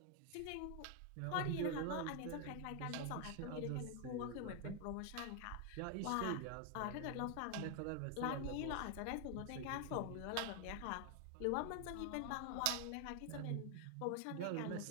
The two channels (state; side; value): different; both; correlation 0.00